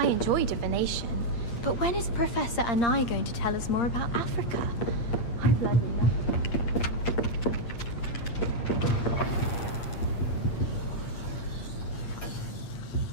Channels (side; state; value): right; late; 8.6 ms